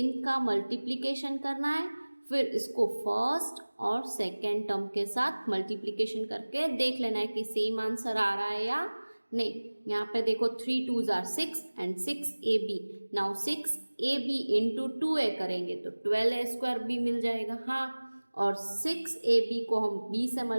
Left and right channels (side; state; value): both; inverted; correlation -1.00